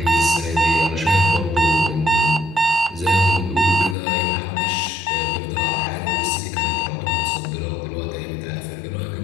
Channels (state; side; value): drops out; right; at 4.0 s